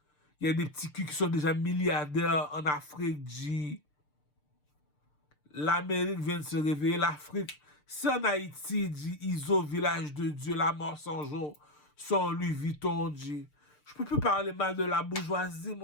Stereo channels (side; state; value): right; late; 6.7 ms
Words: Il y a des petits culs qui sont déjà milliardaires en Afrique. L'Amérique vient de se réveiller. L'Afrique, c'est en Haïti, ISO, village de Dieu, la mort sans jour, son Louis Vuitton. Je peux plus parler mal de la bourgeoisie,